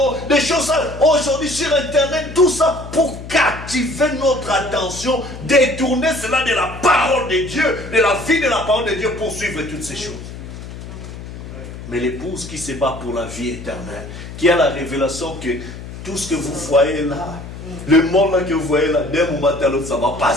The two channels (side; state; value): left; noise; hum, 12 dB below the sound